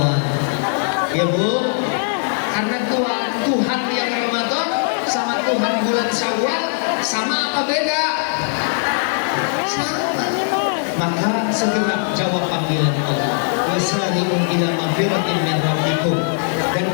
Ya Bu, karena Tuhan yang Ramadan sama Tuhan bulan Syawal sama apa beda? Sama. Maka segera jawab panggilan Allah. Wasari'u ila magfiratin min rabbikum. Dan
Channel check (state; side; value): silent; right; 59 dB below the other